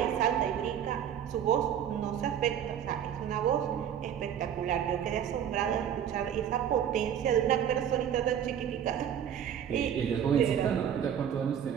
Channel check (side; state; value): left; quieter; 9.2 dB